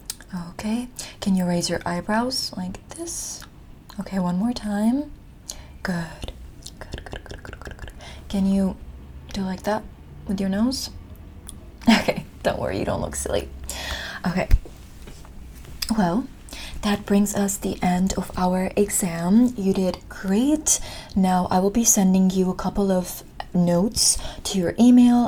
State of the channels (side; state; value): both; identical; correlation 1.00